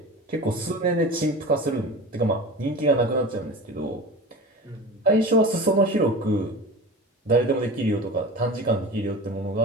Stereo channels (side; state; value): both; normal; correlation 0.33